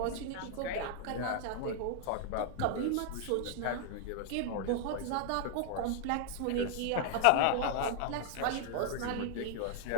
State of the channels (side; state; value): both; different; correlation 0.00